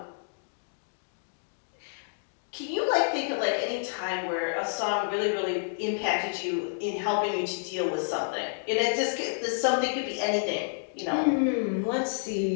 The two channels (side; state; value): right; silent; digital silence